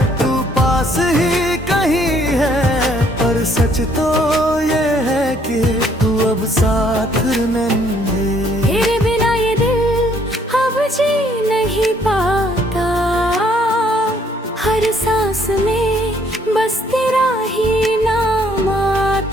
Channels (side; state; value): both; normal; correlation 0.65